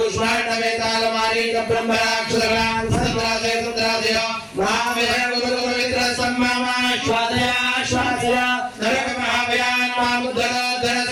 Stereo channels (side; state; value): both; identical; correlation 1.00